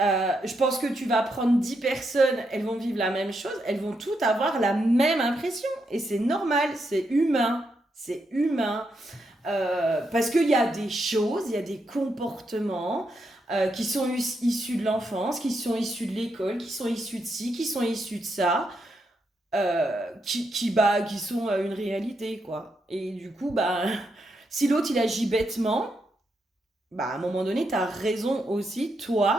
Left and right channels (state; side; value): normal; both; correlation 0.81